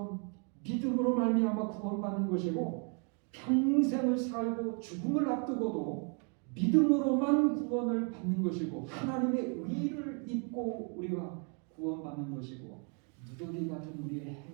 믿음으로 말미암아 구원받는 것이고 평생을 살고 죽음을 앞두고도 믿음으로만 구원을 받는 것이고 하나님의 의를 입고 우리가 구원받는 것이고 누더기 같은 우리의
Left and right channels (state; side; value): quieter; left; 38.6 dB